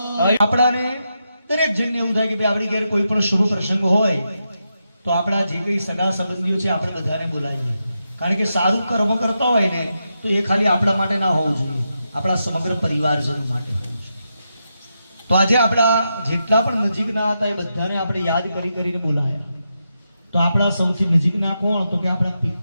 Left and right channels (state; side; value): inverted; both; correlation -0.86